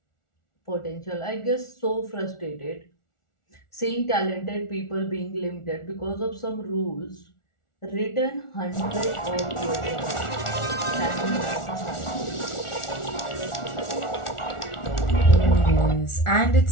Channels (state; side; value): late; right; 1.4 ms